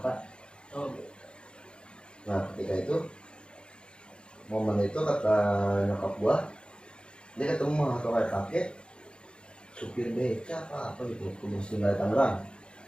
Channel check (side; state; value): right; late; 0.053 ms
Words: Oh, Nah ketika itu momen itu kata nyokap gua, dia ketemu atau kayak kakek supir beca apa gitu, kudus tinggal di Tangerang.